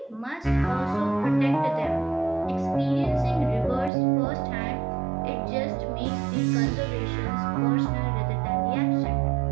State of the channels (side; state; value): left; drops out; at 3.9 s